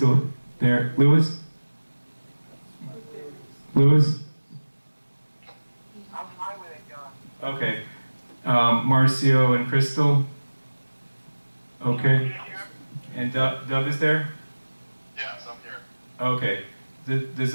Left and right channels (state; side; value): inverted; both; correlation -1.00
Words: there? Louis? Louis? I'm fine with it, John. Okay. Marcio and Crystal? Okay. And Dub is there? Yes, I'm here. Okay. Does